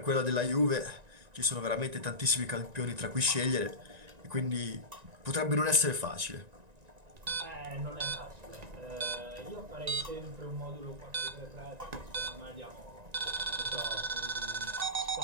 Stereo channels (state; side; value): late; left; 1.9 ms